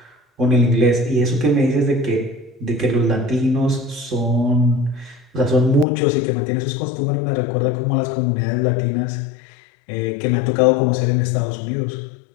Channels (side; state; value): right; drops out; at 5.9 s